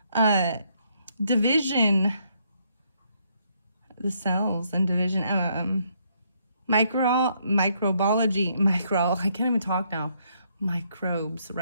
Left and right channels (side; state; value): both; inverted; correlation -0.72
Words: division, the cells and division, microbiology, I can't even talk now, microbes,